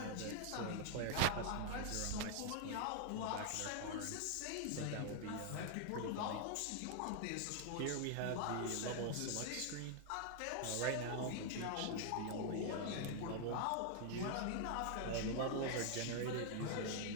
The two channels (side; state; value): both; different; correlation 0.00